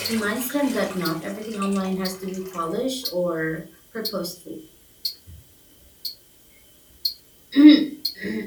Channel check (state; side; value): identical; both; correlation 1.00